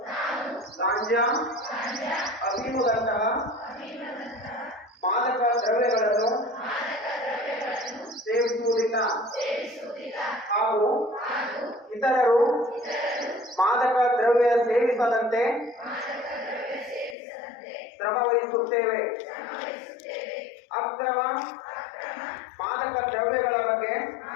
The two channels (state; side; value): drops out; right; at 17.2 s